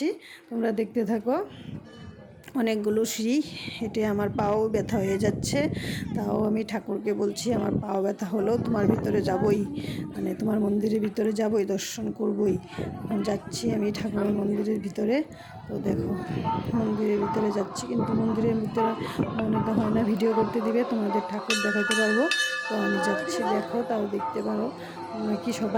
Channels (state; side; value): identical; both; correlation 1.00